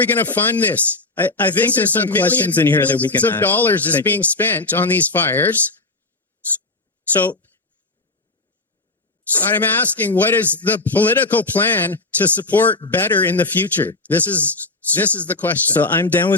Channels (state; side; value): quieter; right; 3.2 dB